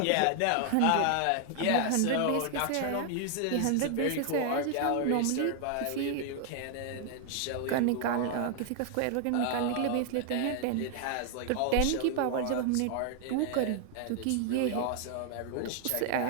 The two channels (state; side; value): different; both; correlation 0.00